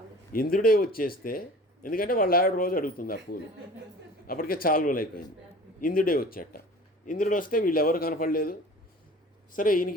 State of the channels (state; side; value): normal; both; correlation 0.43